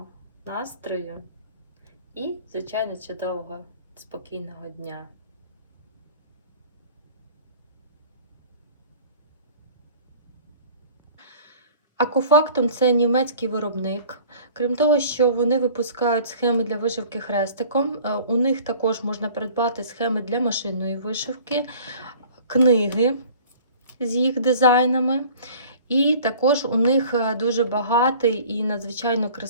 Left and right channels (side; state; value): both; inverted; correlation -0.48